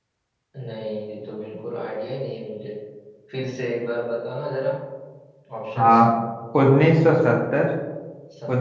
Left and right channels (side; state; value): both; identical; correlation 1.00